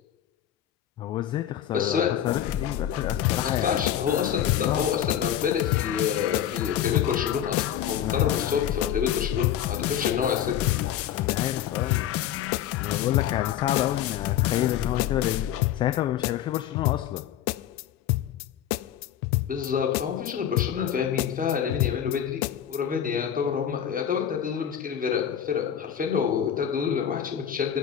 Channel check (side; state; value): right; quieter; 10.3 dB